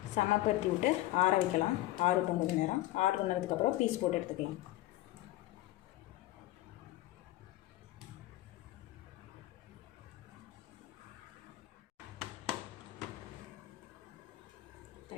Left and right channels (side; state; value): right; quieter; 16.6 dB